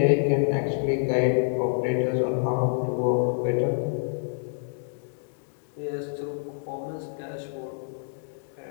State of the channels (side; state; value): right; silent; digital silence